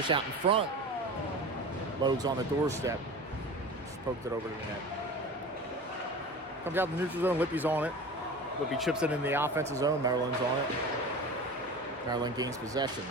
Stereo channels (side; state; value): both; normal; correlation 0.34